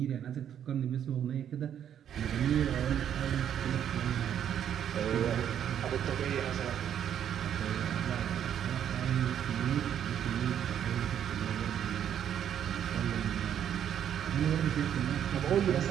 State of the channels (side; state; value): left; quieter; 9.5 dB